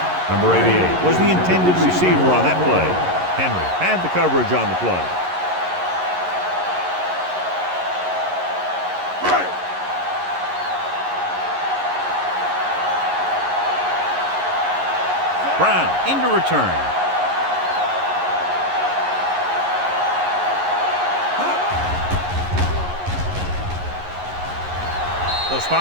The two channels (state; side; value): late; left; 11 ms